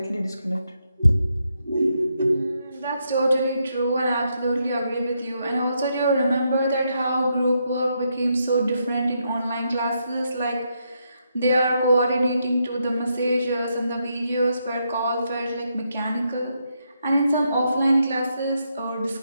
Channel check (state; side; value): inverted; both; correlation -0.80